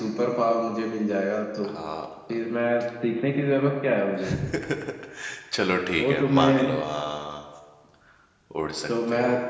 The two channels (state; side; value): identical; both; correlation 1.00